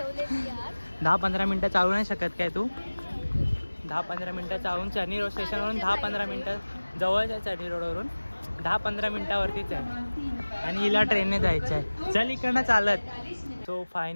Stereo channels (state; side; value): inverted; both; correlation -1.00